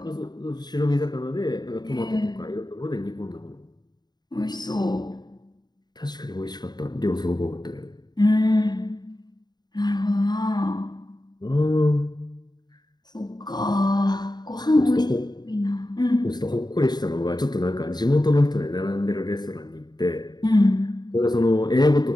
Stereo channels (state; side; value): late; right; 0.20 ms